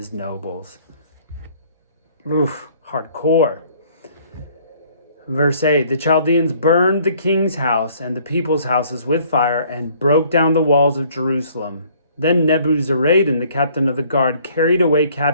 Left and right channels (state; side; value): inverted; both; correlation -0.59